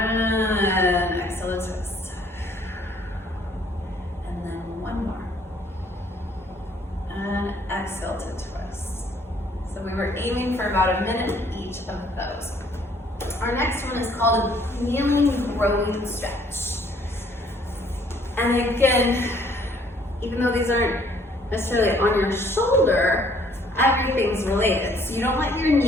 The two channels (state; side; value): normal; both; correlation 0.62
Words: exhale and twist. And then one more. And exhale to twist. So we were aiming for about a minute each of those. Our next one is called a kneeling growing stretch. And again, even though these aren't necessarily on your shoulder, everything's related. So you don't let your